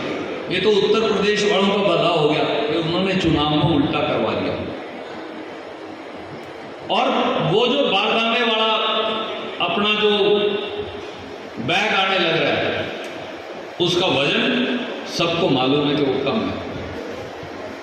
ये तो उत्तर प्रदेश वालों का बदलाव हो गया कि उन्होंने चुनाव को उल्टा करवा दिया। और वो जो बारदाने वाला अपना जो बैग आने लग रहा है उसका वजन सबको मालूम है कि वो कम है,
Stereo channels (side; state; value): both; identical; correlation 1.00